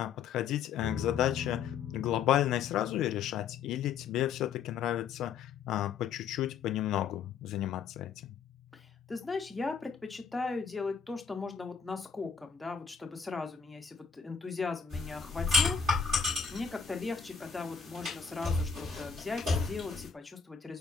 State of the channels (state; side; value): quieter; right; 6.5 dB